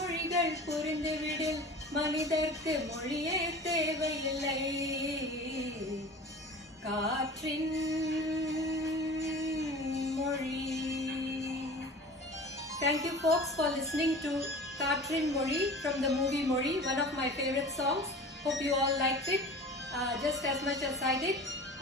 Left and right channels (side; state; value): both; normal; correlation 0.38